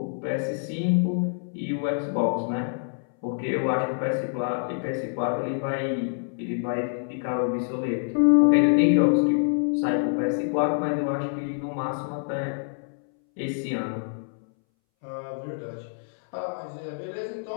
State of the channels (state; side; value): silent; right; 61 dB below the other